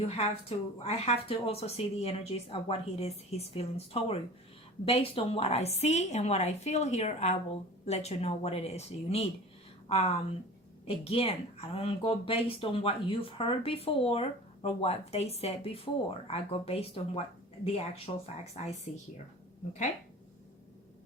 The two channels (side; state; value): both; normal; correlation 0.39